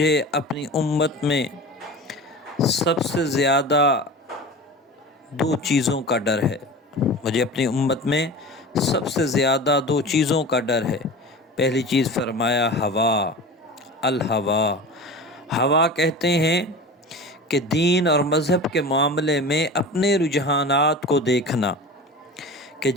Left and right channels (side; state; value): both; normal; correlation 0.34